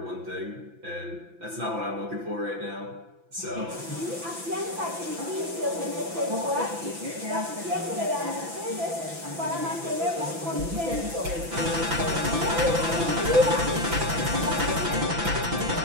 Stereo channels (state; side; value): late; left; 5.9 ms